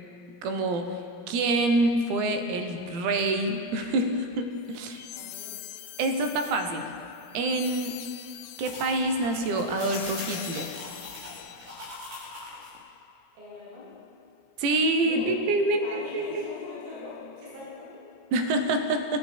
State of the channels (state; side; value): late; left; 17 ms